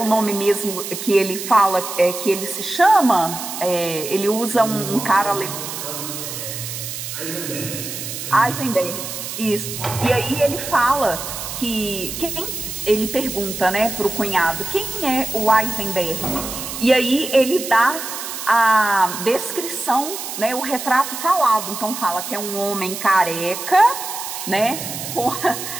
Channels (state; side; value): noise; right; hiss, 7 dB below the sound